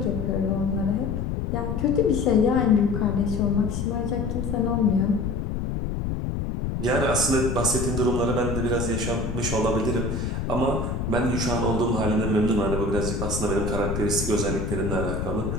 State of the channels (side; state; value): left; noise; rumble, 2 dB below the sound